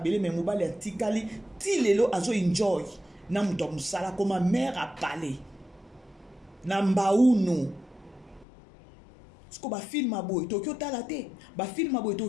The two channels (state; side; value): drops out; right; at 8.5 s